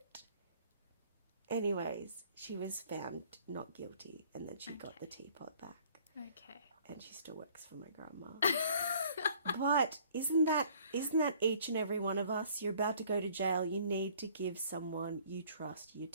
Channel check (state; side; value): inverted; both; correlation -0.56